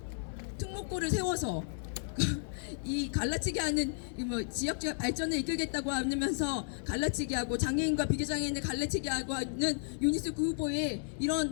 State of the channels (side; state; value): right; silent; digital silence